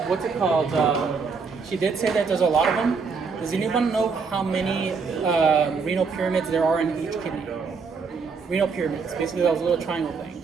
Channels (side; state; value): left; quieter; 5.1 dB